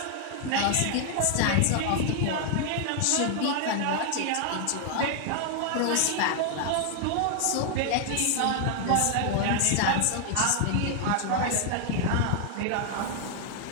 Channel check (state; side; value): different; both; correlation 0.00